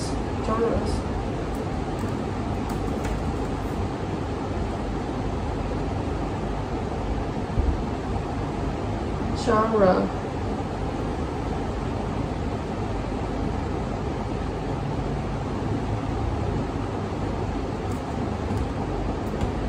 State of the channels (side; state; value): both; identical; correlation 1.00